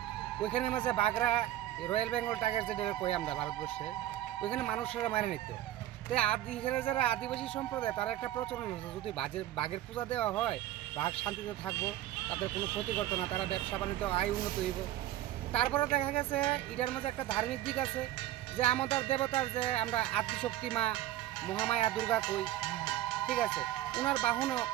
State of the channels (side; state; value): left; quieter; 13.9 dB